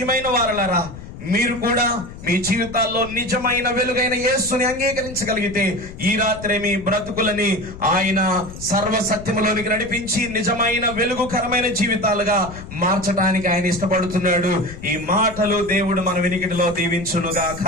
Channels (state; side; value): noise; left; rumble, 14 dB below the sound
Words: వారలారా, మీరు కూడా మీ జీవితాల్లో నిజమైన వెలుగైన యేసుని అంగీకరించగలిగితే ఈ రాత్రి మీ బ్రతుకులని ఆయన సర్వసత్యములోనికి నడిపించి నిజమైన వెలుగుకరమైన జీవితాలుగా మార్చడానికి ఆయన ఇష్టపడుతున్నాడు. ఈ మాటలు దేవుడు మన వినికిడిలో దీవించునుగాక.